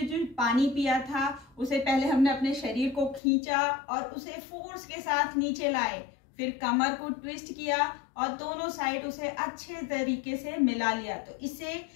पानी पिया था उसे पहले हमने अपने शरीर को खींचा और उसे फोर्स के साथ नीचे लाए, फिर कमर को ट्विस्ट किया और दोनों साइड उसे अच्छे तरीके से मिला लिया। तो इससे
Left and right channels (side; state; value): right; drops out; at 3.2 s